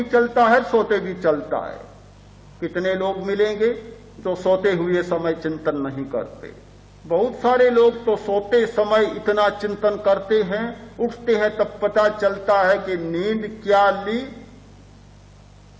चलता है, सोते भी चलता है। कितने लोग मिलेंगे तो सोते हुए समय चिंतन नहीं करते। बहुत सारे लोग तो सोते समय इतना चिंतन करते हैं, उठते हैं तब पता चलता है कि नींद क्या ली,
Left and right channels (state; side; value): identical; both; correlation 1.00